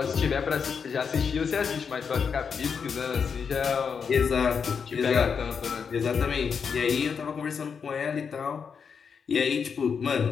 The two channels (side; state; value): right; quieter; 6.3 dB